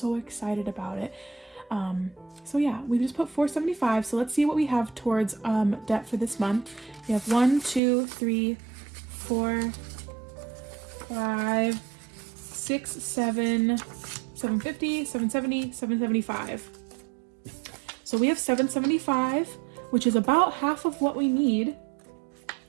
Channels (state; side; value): drops out; left; at 7.8 s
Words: excited about it. So yeah, we just put $475. So let's see what we have towards debt for this month. We have 1, 2, 3, 4, 5, 6, 7, 750, 770, 775. So we have $775, which is about half of what we need